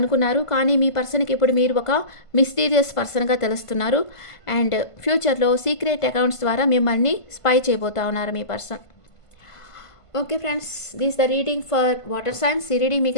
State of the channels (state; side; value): late; right; 1.5 ms